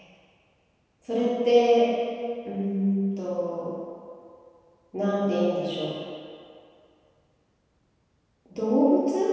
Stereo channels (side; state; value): both; identical; correlation 1.00